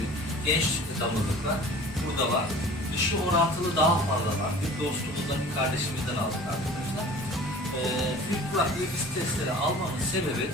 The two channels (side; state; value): right; noise; rumble, 19 dB below the sound